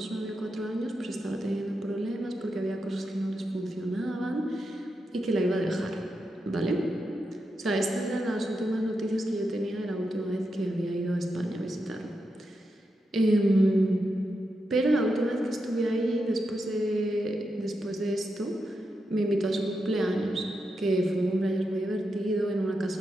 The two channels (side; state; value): both; normal; correlation 0.86